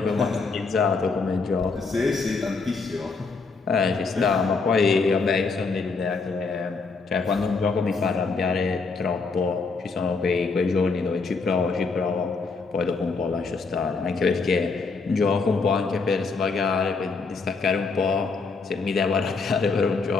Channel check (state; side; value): quieter; right; 4.4 dB